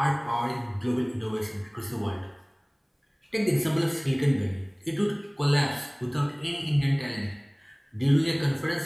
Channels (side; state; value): both; identical; correlation 1.00